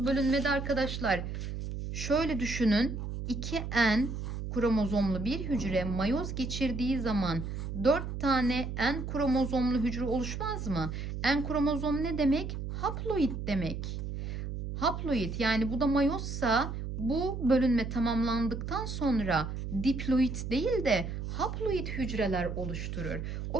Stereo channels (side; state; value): right; noise; hum, 5 dB below the sound